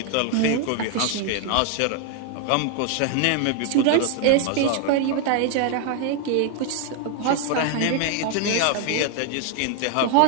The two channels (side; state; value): both; different; correlation 0.00